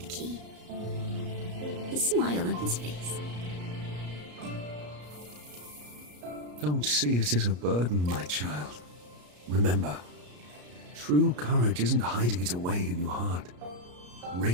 key. The smile on his face. Don't see it as a burden, my child. Remember, true courage isn't hiding it away in your heart.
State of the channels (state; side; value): late; left; 34 ms